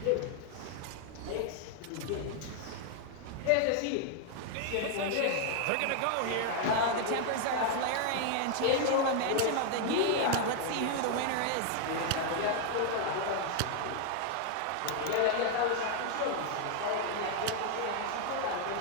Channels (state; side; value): different; both; correlation 0.00